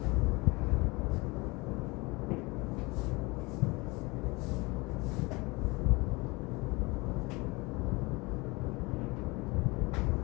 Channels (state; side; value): quieter; right; 25.0 dB